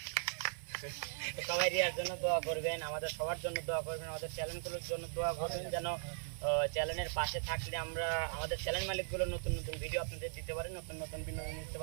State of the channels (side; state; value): left; silent; 52 dB below the other